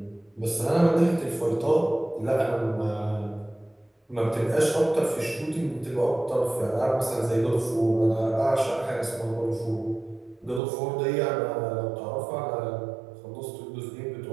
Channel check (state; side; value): drops out; left; at 10.6 s